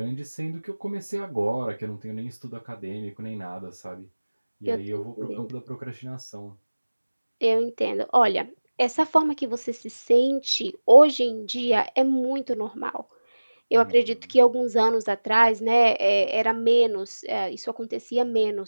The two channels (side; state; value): both; inverted; correlation -1.00